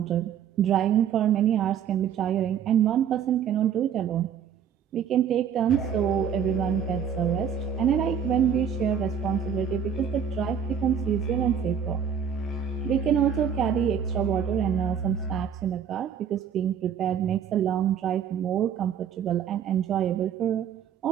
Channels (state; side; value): quieter; left; 8.0 dB